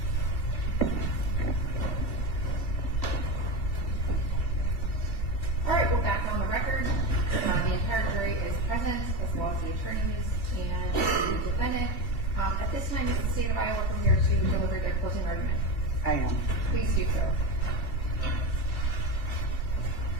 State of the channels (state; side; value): late; right; 2.5 ms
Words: All right, we're back on the record. The entire jury is present, as well as the attorneys and the defendant. At this time, is the state of Iowa prepared to deliver their closing argument? I am. Please do so. Can